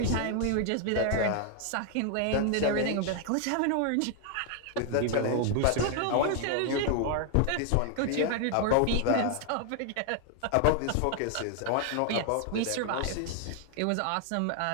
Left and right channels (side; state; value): both; different; correlation 0.00